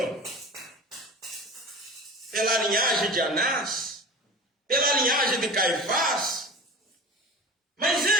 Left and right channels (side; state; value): both; normal; correlation 0.35